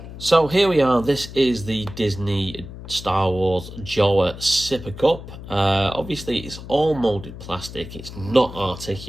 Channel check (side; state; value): left; noise; hum, 13 dB below the sound